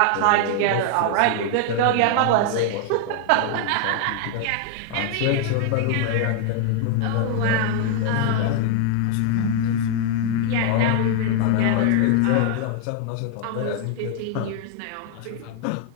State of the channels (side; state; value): both; different; correlation 0.00